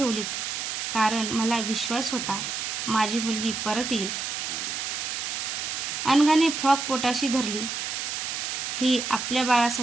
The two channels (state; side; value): noise; right; hiss, 3 dB below the sound